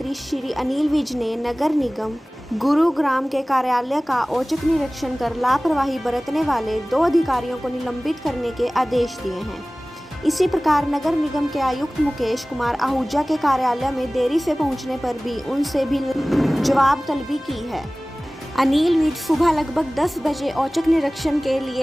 श्री अनिल विज ने नगर निगम गुरुग्राम के कार्यालय का औचक निरीक्षण कर लापरवाही बरतने वाले 2 अधिकारियों को निलंबित करने के आदेश दिए हैं। इसी प्रकार नगर निगम के आयुक्त मुकेश कुमार आहूजा के कार्यालय में देरी से पहुंचने पर भी उनसे भी जवाब तलबी की है। अनिल विज सुबह लगभग 10 बजे औचक निरीक्षण के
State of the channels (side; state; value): both; normal; correlation 0.98